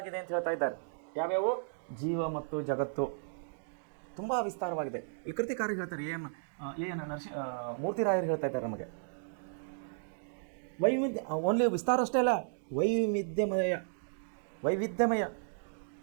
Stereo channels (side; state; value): left; silent; digital silence